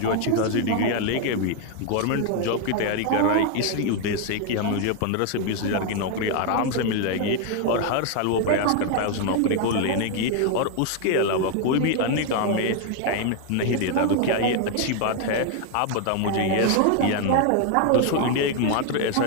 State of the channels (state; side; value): different; both; correlation 0.01